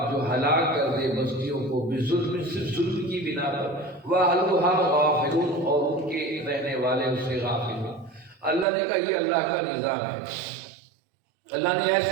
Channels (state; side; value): drops out; left; at 8.7 s